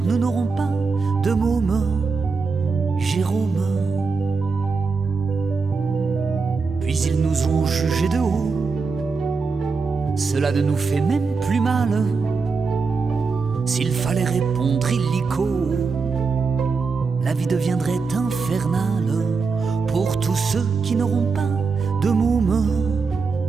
nous n'aurons pas de môme, Jérôme. Puis ils nous ont jugés de haut, cela ne nous fait même plus mal. S'il fallait répondre illico, la vie deviendrait infernale pour tous ceux qui n'auront pas de môme,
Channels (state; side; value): quieter; left; 4.7 dB